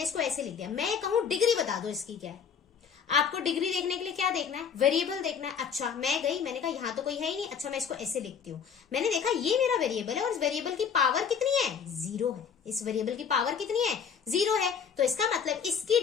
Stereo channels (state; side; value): quieter; right; 7.0 dB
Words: इसको ऐसे लिख दिया, मैं कहूं डिग्री बता दो इसकी क्या है। आपको डिग्री देखने के लिए क्या देखना है, वेरिएबल देखना है। अच्छा, मैं गई, मैंने कहा यहाँ तो कोई है ही नहीं, अच्छा मैं इसको ऐसे लिखती हूँ। मैंने देखा ये मेरा वेरिएबल है और इस वेरिएबल की पावर कितनी है, 0 है। इस वेरिएबल की पावर कितनी है, 0 है। तो इसका मतलब इसकी